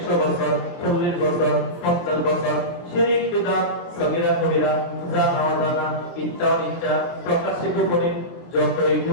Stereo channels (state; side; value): late; right; 23 ms